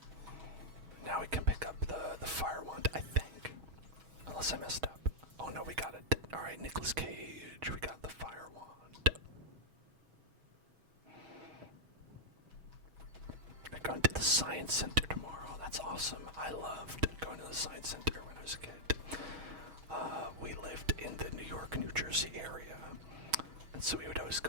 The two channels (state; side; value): late; left; 6.3 ms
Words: Now we can pick up the fire wand, I think. Unless I messed up. Oh no, we got it. Alright, Nicolas Cage, we got the fire wand. We're going to the Science Center tomorrow. That's awesome. I loved going to the Science Center when I was a kid. We lived in the New York, New Jersey area. And so we would always